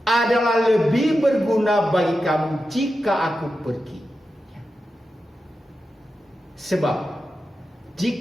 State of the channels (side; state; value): both; normal; correlation 0.90